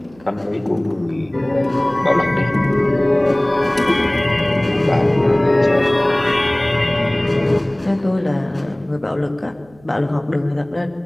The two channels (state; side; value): noise; right; hum, 28 dB below the sound